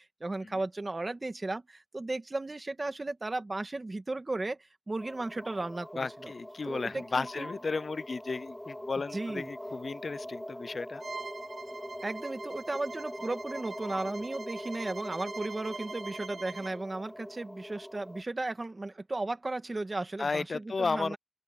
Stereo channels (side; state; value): both; normal; correlation 0.95